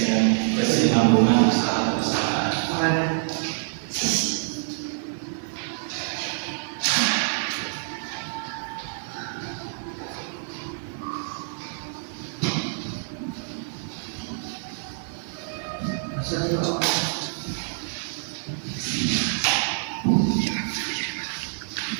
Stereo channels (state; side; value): silent; left; digital silence